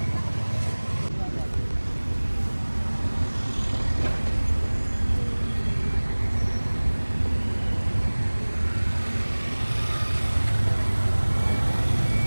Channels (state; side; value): inverted; both; correlation -1.00